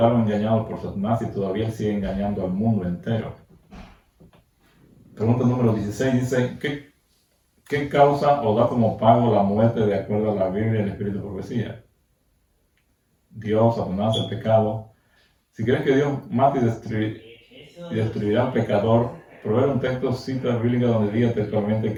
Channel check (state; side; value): identical; both; correlation 1.00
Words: engañados por Satanás y todavía sigue engañando al mundo entero. Pregunta número 16 dice, ¿qué causa o da como pago la muerte de acuerdo a la Biblia y el Espíritu de profecía? Dios, Satanás, el pecado. Si crees que Dios mate y destruirá al pecador, proveer un texto cita bíblica donde diga textualmente